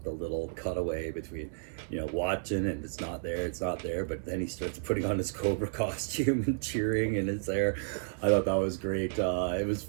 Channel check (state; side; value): silent; left; digital silence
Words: the little cutaway between watching and it's not there, but then he starts putting on his Cobra costume and cheering and it's there. I thought that was great. It was